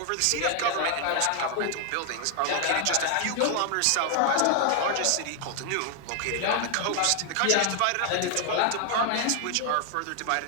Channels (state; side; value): different; both; correlation 0.00